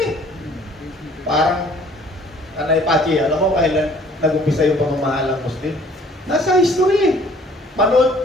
Parang, Kanay Pachi, alam mo kailan nag-umpisa yung pamamahalang Muslim? Nasa history eh.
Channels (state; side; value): normal; both; correlation 0.56